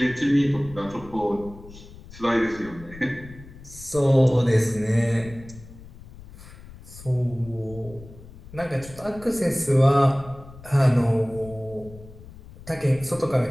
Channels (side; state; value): left; noise; rumble, 18 dB below the sound